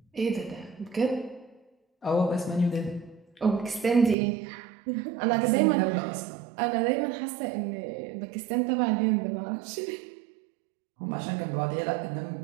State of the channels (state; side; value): drops out; left; at 4.2 s